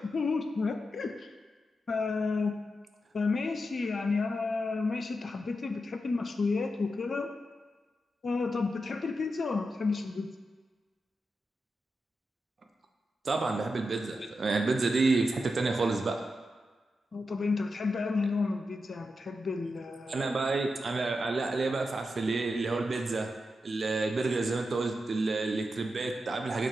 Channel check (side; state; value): both; normal; correlation 0.88